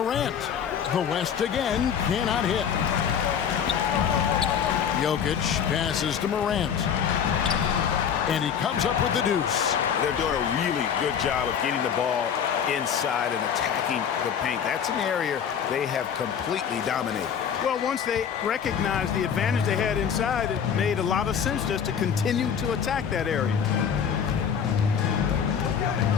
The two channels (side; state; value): right; quieter; 7.8 dB